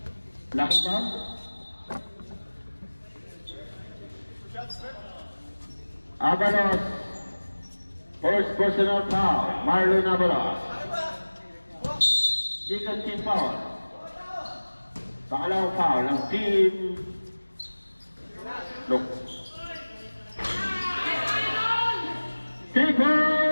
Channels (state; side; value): inverted; both; correlation -1.00